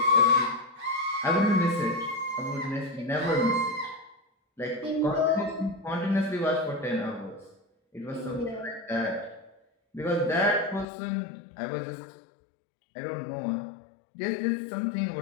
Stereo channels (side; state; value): right; drops out; at 10.9 s